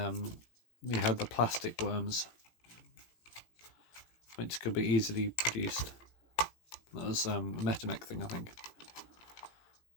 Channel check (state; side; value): late; right; 17 ms